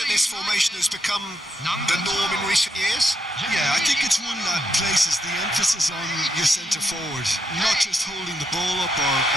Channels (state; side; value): normal; both; correlation 0.79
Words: this formation has become the norm in recent years? Yeah, I think it's one that places the emphasis on your centre forward, not just holding the ball up